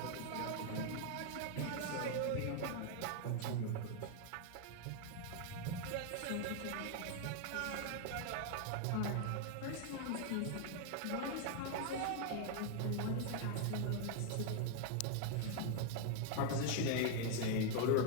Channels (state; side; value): different; both; correlation 0.00